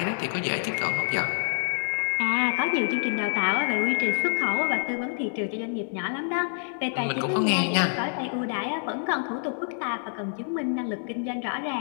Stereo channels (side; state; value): right; silent; digital silence